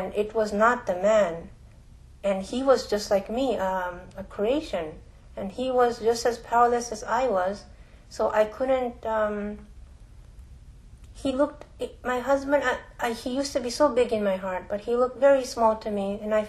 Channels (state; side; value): identical; both; correlation 1.00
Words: it was not the man. And he was just like me, a creation. And he was just as powerless as I was. So I couldn't... my husband, he used to be so big in my heart, but he looked very small to me, and I